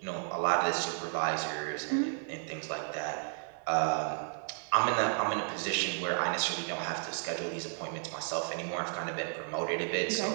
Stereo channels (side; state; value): left; silent; 56 dB below the other